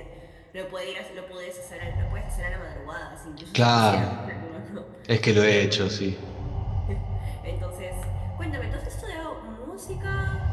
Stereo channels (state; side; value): identical; both; correlation 1.00